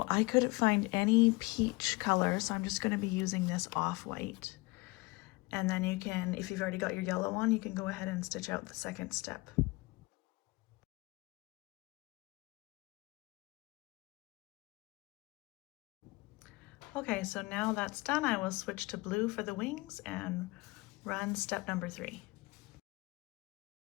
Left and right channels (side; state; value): right; quieter; 23.7 dB